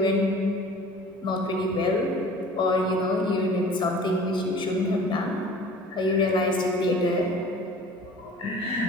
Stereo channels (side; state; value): both; normal; correlation 0.45